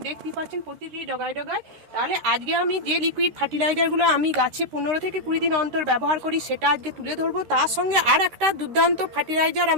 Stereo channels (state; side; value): late; left; 13 ms